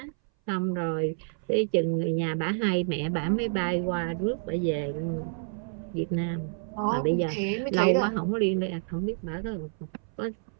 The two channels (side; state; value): left; silent; 59 dB below the other